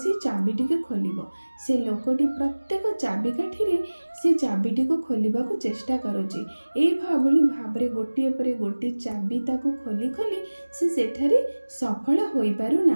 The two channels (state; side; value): inverted; both; correlation -1.00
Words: चाबिटी को खोल से लोकटी प्रत्येक चाबिकाठी से चाबिटी को खोलने को चेष्टा करुचे एभली भाव गोटे पर गोटे चाबी ताको खोली खोली से सेठारे सफल हो पारु